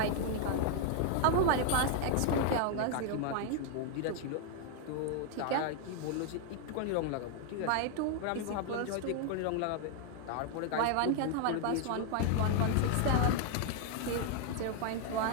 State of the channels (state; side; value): different; both; correlation 0.00